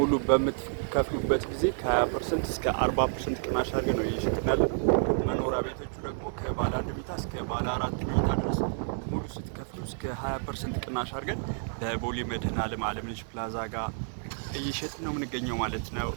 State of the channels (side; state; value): left; silent; digital silence